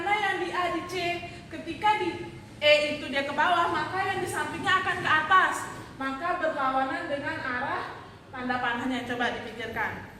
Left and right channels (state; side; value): identical; both; correlation 1.00